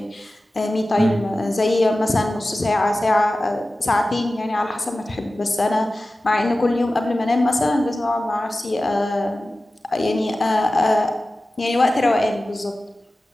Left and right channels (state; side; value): normal; both; correlation 0.96